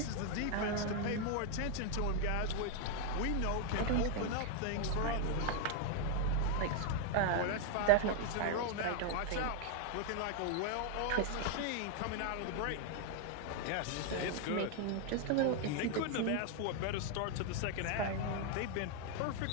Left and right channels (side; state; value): both; different; correlation 0.00